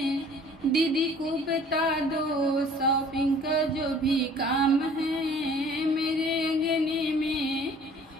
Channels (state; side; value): normal; both; correlation 0.52